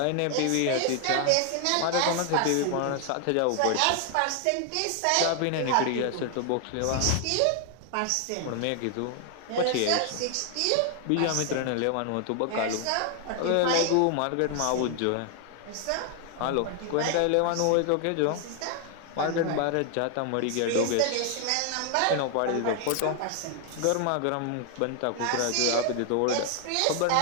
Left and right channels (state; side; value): different; both; correlation 0.00